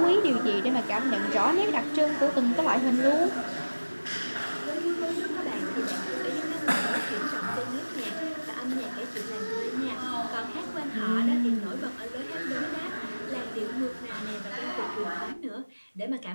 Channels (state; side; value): inverted; both; correlation -1.00